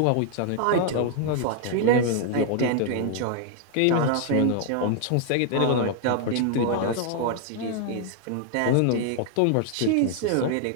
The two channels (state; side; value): different; both; correlation 0.00